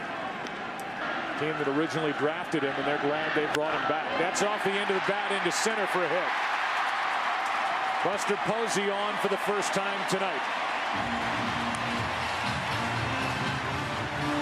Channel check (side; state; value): both; identical; correlation 1.00